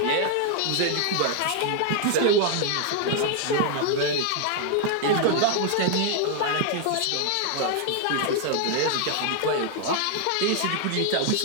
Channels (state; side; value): different; both; correlation 0.00